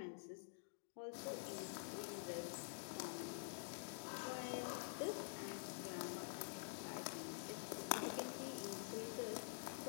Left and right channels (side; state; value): right; silent; digital silence